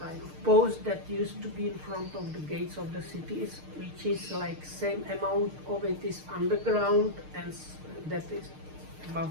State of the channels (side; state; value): left; late; 6.6 ms